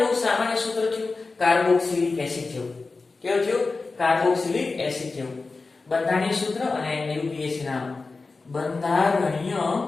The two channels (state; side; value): quieter; right; 3.9 dB